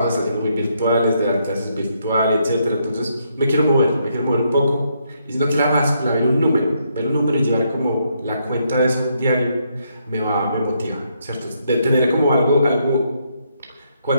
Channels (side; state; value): both; inverted; correlation -0.75